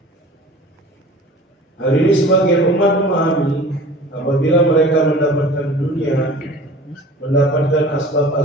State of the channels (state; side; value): normal; both; correlation 0.43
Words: Hari ini sebagian umat memahami apabila mereka mendapatkan dunia, mendapatkan